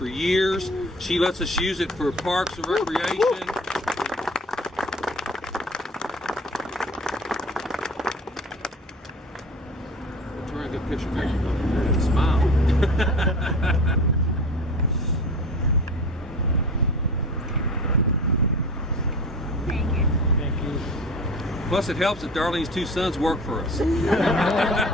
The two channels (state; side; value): normal; both; correlation 0.38